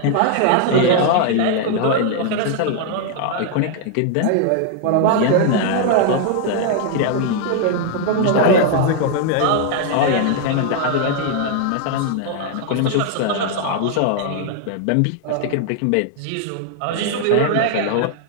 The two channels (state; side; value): different; both; correlation 0.00